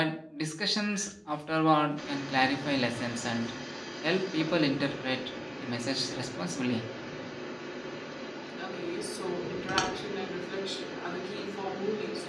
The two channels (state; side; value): identical; both; correlation 1.00